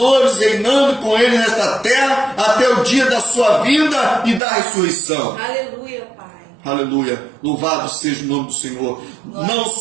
reinando com ele nesta terra até o dia da sua vinda e da ressurreição. Aleluia, Pai. Aleluia, louvado seja o nome do Senhor. Não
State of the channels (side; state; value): left; drops out; at 4.4 s